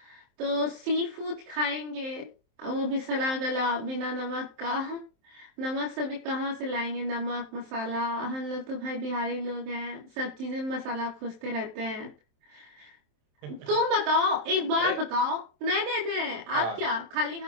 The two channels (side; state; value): left; late; 27 ms